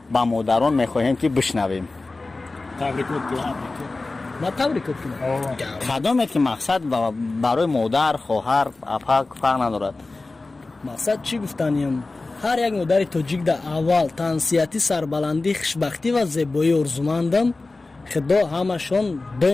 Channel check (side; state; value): right; quieter; 3.4 dB